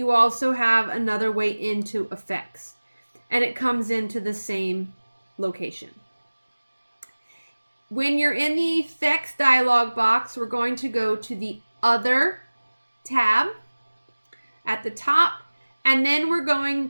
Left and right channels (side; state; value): both; inverted; correlation -1.00